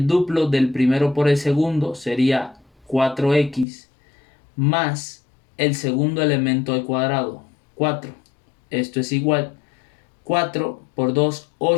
duplo del primero por el segundo, sería 4x, más el segundo elemento al cuadrado, 4. Esto es igual 4 por 2,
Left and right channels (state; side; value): drops out; right; at 3.7 s